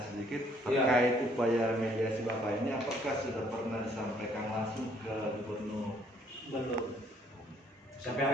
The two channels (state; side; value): normal; both; correlation 0.64